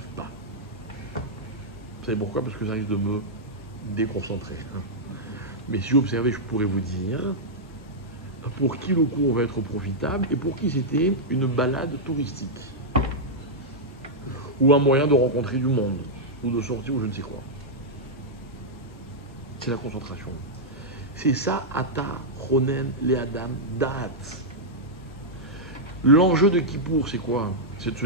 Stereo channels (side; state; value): both; normal; correlation -0.06